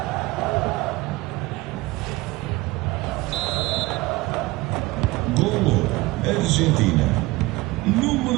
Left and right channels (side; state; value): left; quieter; 21.0 dB